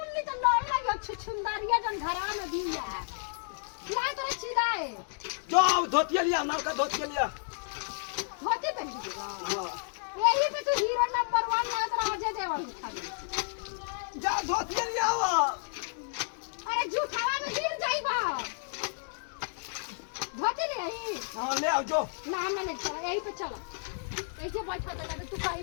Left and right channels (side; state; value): right; silent; digital silence